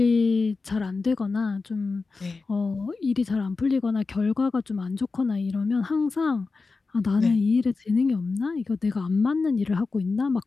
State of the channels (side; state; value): right; quieter; 4.1 dB